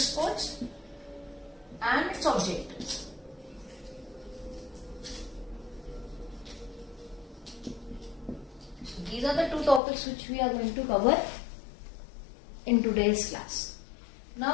and its objectives. So these are the two topics which we are going to cover in today's class.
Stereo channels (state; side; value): drops out; right; at 9.8 s